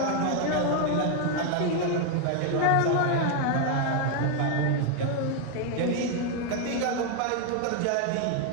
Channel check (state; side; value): different; both; correlation 0.00